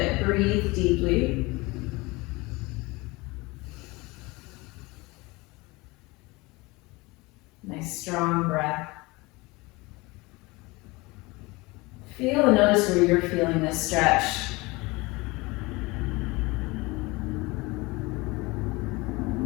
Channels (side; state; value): right; quieter; 23.6 dB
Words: Breathe deeply. Nice strong breath. Feel and notice where you're feeling this stretch.